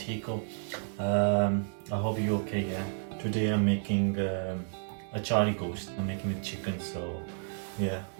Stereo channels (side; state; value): left; silent; 56 dB below the other